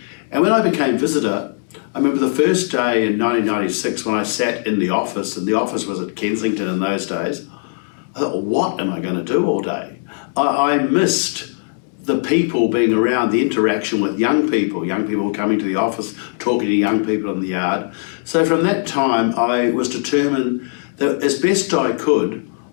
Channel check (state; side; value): silent; right; 65 dB below the other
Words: And when I became visitor, I remember the first day in 1996 when I sat in the office, and the office was at Kensington in those days, I thought, well, what am I going to do all day? I missed the people being around, the interaction with young people coming to the office, talking to young people in the yard. So from that time, I was determined that as best I could,